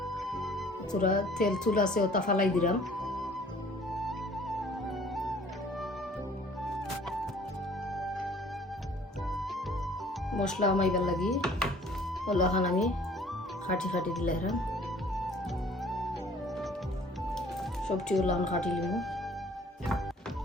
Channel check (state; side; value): normal; both; correlation 0.54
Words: তেল চুল আছে ওটা ফালাই দিলাম। মশলা আমাইবার লাগি ওলাখান আমি খাটি খাটি দিলাম। সবজি ওলাখান খাটি লিমু।